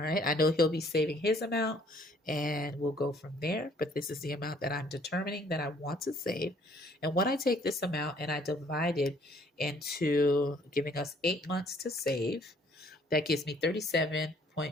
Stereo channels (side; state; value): both; normal; correlation 0.61